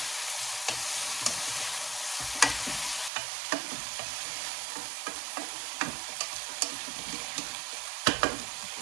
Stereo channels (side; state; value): left; drops out; at 3.1 s